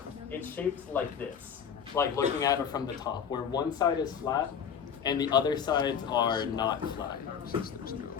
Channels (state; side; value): quieter; right; 7.5 dB